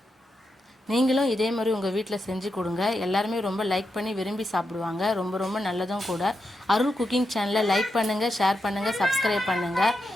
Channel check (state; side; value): normal; both; correlation 0.86